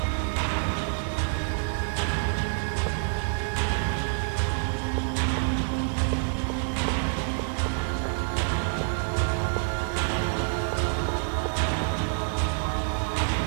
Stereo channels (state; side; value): silent; left; 60 dB below the other